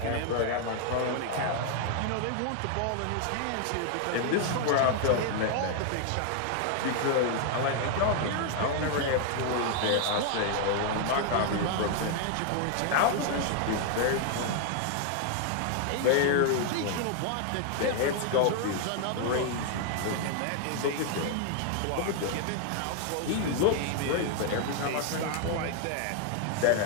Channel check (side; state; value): both; different; correlation 0.00